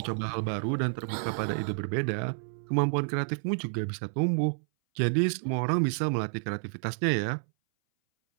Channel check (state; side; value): silent; left; 58 dB below the other